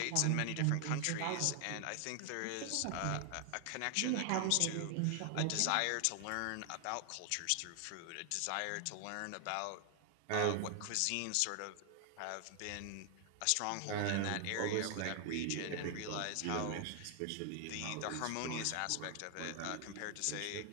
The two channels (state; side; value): different; both; correlation 0.00